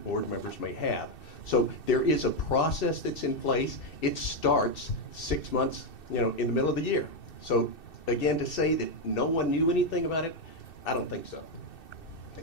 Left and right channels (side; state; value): right; late; 2.7 ms